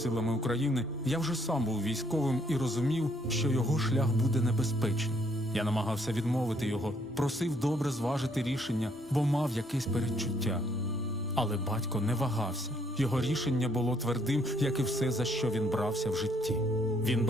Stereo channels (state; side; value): normal; both; correlation 0.68